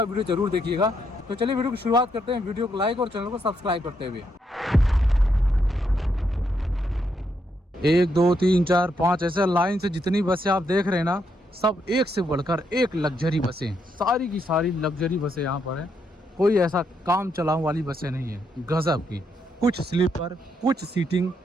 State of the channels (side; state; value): both; normal; correlation 0.77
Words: वीडियो जरूर देखिएगा। तो चलिए वीडियो की शुरुआत करते हैं। वीडियो को लाइक और चैनल को सब्सक्राइब करते हुए। 1 2 3 4 5 ऐसे लाइन से जितनी बसें आप देख रहे हैं ना, सब एक से बढ़कर एक लग्जरी बसें, सारी की सारी लग्जरी बसें यहाँ पर हैं। कोई ऐसा काम चलाऊ वाली बसें नहीं है, गजब की। कुछ स्लीपर, कुछ सीटिंग,